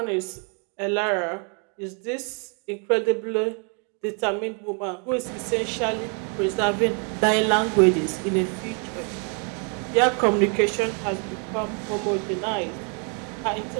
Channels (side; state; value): left; quieter; 38.8 dB